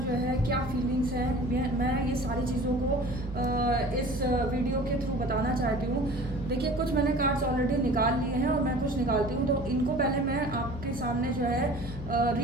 जो है क्या फीलिंग्स हैं, मैं ये सारी चीज़ों को इस वीडियो के थ्रू बताना चाहती हूँ। देखिए, कुछ मैंने कार्ड्स ऑलरेडी निकाल लिए हैं और मैं कुछ निकालती हूँ, तो इनको पहले मैं आपके सामने जो है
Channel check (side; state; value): right; noise; hum, 11 dB below the sound